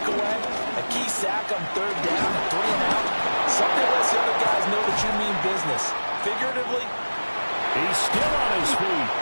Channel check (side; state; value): both; inverted; correlation -1.00